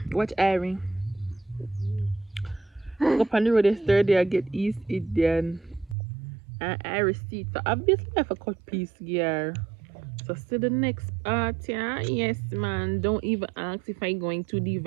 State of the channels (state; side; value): drops out; left; at 6.0 s